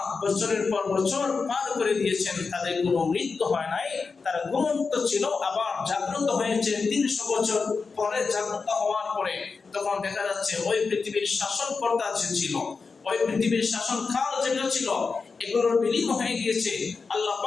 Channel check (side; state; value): right; quieter; 4.7 dB